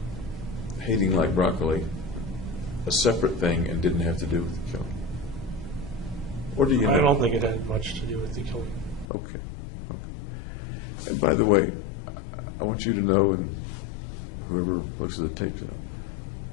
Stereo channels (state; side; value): drops out; right; at 9.1 s